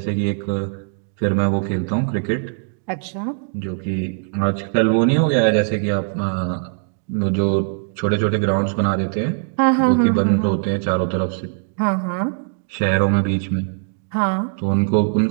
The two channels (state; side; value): silent; left; 65 dB below the other